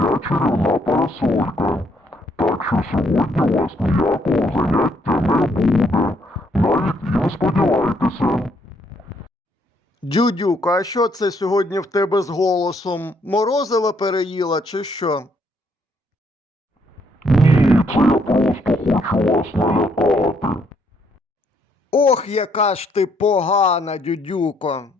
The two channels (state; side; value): normal; both; correlation 0.70